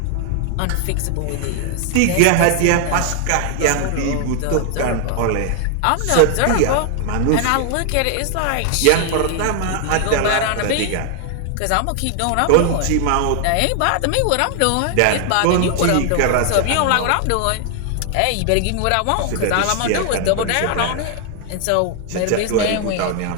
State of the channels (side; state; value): both; different; correlation 0.00